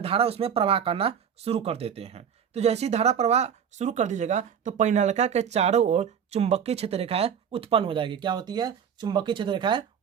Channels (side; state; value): left; quieter; 7.9 dB